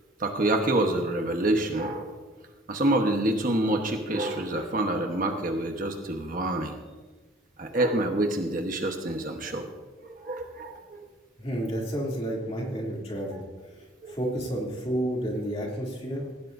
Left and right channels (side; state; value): both; normal; correlation 0.52